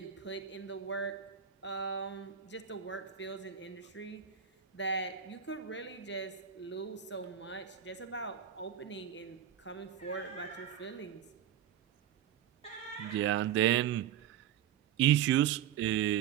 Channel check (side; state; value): left; quieter; 9.7 dB